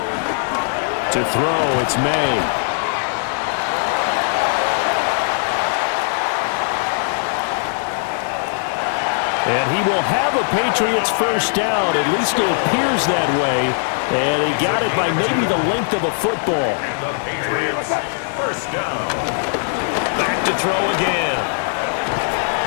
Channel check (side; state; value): right; silent; 62 dB below the other